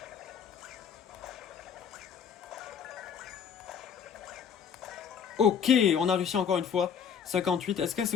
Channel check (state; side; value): quieter; right; 7.5 dB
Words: Ok, on a réussi encore une fois. 58, est-ce qu'elle se